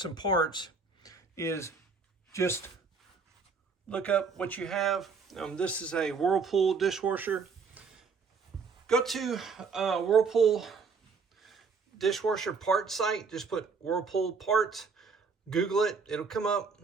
some parts is just look up what you have. This is a Whirlpool dishwasher. Go to Whirlpool dishwasher parts site, just put Whirlpool parts, Google it, it'll come up.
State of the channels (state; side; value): quieter; left; 5.0 dB